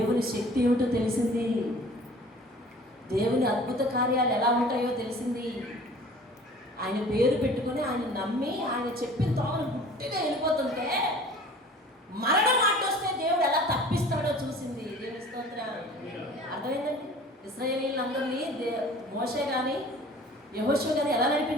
శక్తి ఏమిటో తెలిసింది, దేవుని అద్భుత కార్యాలు ఎలా ఉంటాయో తెలిసింది. ఆయన పేరు పెట్టుకుని, ఆయన నమ్మి, ఆయన చెప్పిన తోమను గుట్టిగా వెళ్ళిపోతుంటే మరణం అడ్డొస్తే దేవుడు ఎలా తప్పిస్తాడో చూసింది. దేవుని స్తోత్రం. అర్థమైందండి? ఇశ్రాయేలీయులందరినీ మోషే కానీ యెహోషువ కానీ ఎలా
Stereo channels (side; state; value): both; normal; correlation 0.46